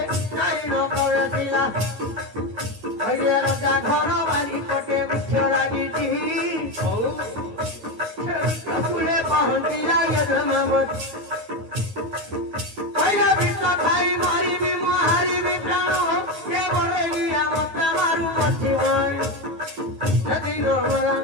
नाइन प्रवेशिला अरे रजा घर बारी कोटे बिछ लागिटी फुले पहुंचिला ये धमावत पहिला बिछ खाई मारी भी हारी भी प्राणो के बरेलिया मत मारू मची भय नदी नमला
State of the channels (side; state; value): left; late; 9.3 ms